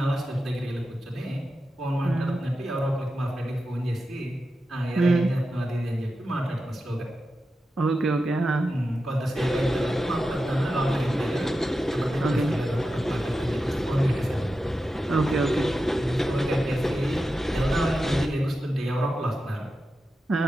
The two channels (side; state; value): both; normal; correlation 0.91